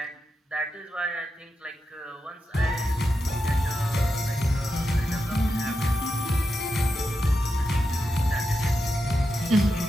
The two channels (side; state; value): both; normal; correlation 0.88